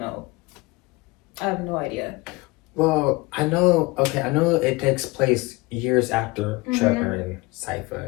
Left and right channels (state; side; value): quieter; right; 23.4 dB